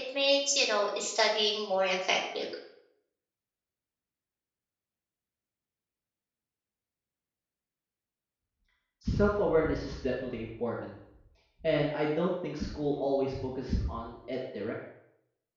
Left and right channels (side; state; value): both; identical; correlation 1.00